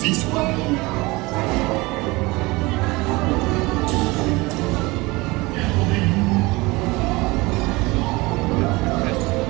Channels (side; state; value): left; quieter; 22.9 dB